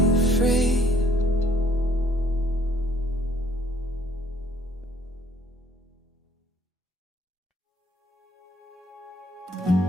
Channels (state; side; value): normal; both; correlation 0.63